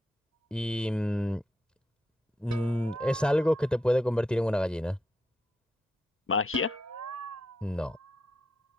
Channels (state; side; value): normal; both; correlation 0.83